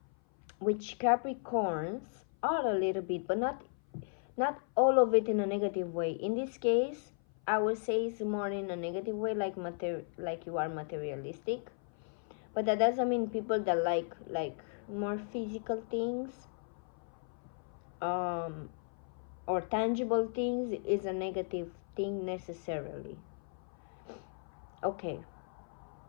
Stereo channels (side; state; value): right; silent; 54 dB below the other